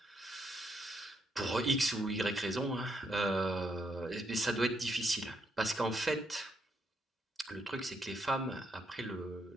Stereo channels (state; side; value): normal; both; correlation 0.77